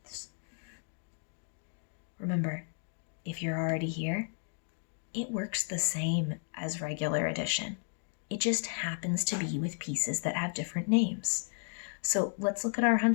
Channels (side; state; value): right; silent; 55 dB below the other